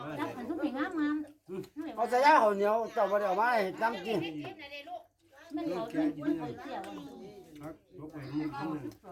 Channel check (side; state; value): both; identical; correlation 1.00